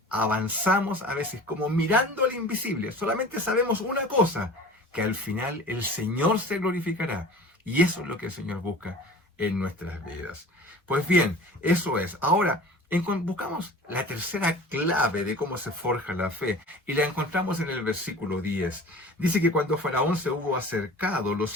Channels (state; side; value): normal; both; correlation 0.41